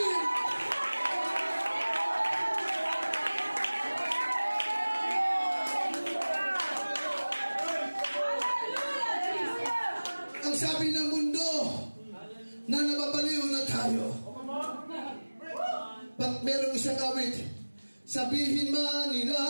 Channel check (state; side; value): inverted; both; correlation -1.00